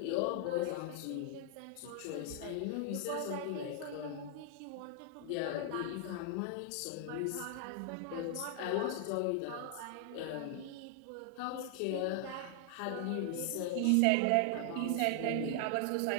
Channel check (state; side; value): different; both; correlation 0.00